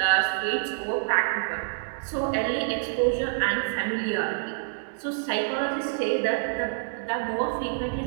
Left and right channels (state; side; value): silent; left; 60 dB below the other